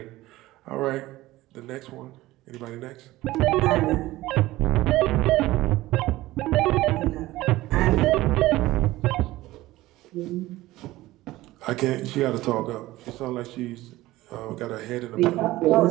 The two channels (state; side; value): quieter; left; 17.4 dB